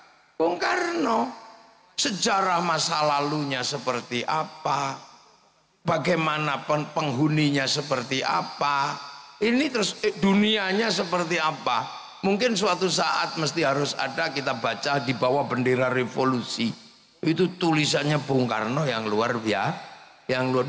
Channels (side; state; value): both; identical; correlation 1.00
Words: Karno. Sejarah masa lalunya seperti apa, bagaimana penghuninya seperti apa, Ini terus dunianya seperti apa? Mungkin suatu saat mesti harus ada kita baca di bawah bendera revolusi. Itu tulisannya Bung Karno yang luar biasa, yang luar